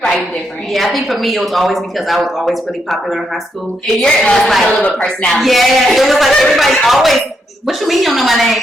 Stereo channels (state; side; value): normal; both; correlation 0.79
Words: Right, different. Yeah, I think for me it was always because I was always really popular in high school. And you're like a little personality. Yeah, it was like everybody always. What you mean you don't know my name?